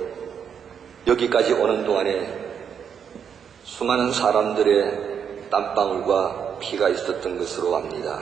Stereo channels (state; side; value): quieter; left; 7.6 dB